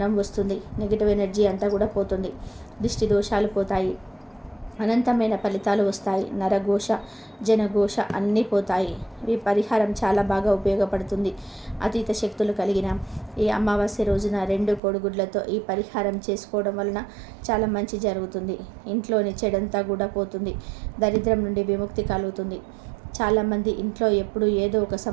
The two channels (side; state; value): left; drops out; at 14.8 s